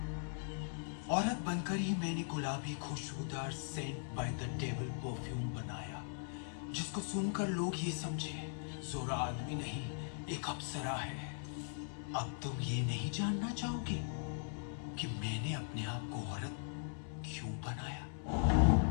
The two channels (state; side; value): silent; right; digital silence